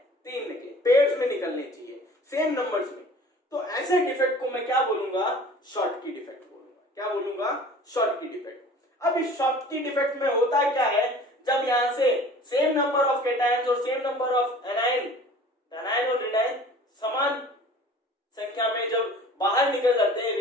निकले, पेयर्स में निकलने चाहिए सेम नंबर्स में, तो ऐसे डिफेक्ट को मैं क्या बोलूंगा, शॉर्टकी डिफेक्ट बोलूंगा। क्या बोलूंगा, शॉर्टकी डिफेक्ट। अब इस शॉर्टकी डिफेक्ट में होता क्या है, जब यहां से सेम नंबर ऑफ कैटायंस और सेम नंबर ऑफ एनायन और एनायन समान संख्या में जब बाहर निकल जाते हैं,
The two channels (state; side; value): normal; both; correlation 0.46